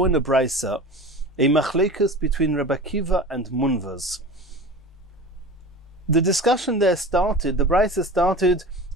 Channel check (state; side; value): normal; both; correlation 0.34